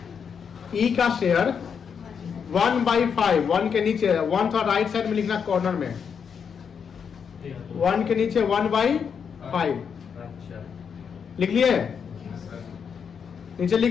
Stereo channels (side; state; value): right; quieter; 6.8 dB